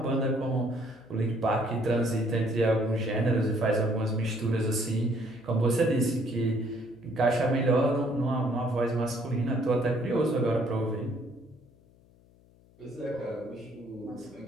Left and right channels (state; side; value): noise; left; hum, 29 dB below the sound